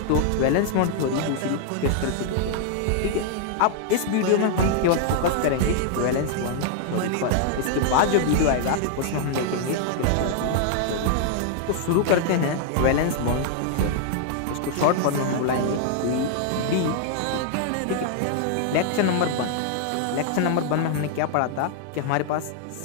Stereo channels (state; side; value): different; both; correlation -0.01